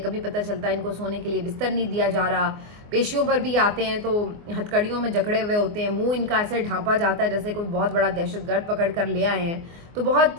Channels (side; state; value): left; late; 24 ms